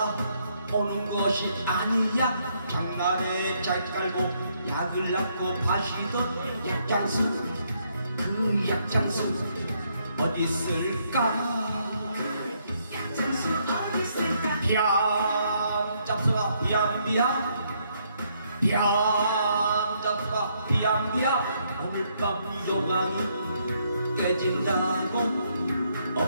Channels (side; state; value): both; inverted; correlation -0.73